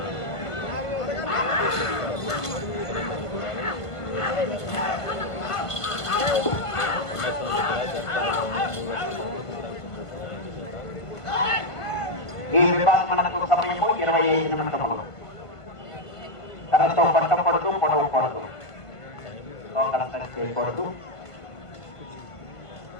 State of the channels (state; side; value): late; right; 1.5 ms